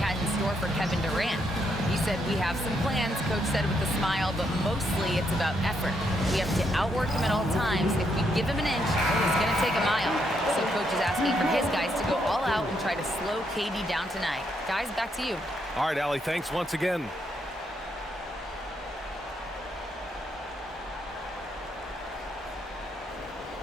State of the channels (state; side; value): normal; both; correlation 0.77